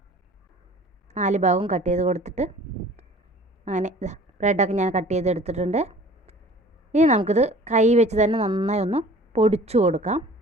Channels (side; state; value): both; normal; correlation 0.48